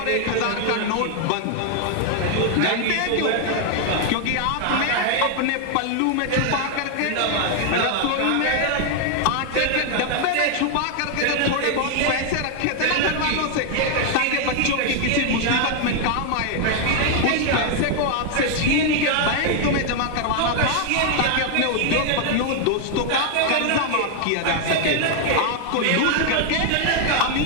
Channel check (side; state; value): both; different; correlation 0.00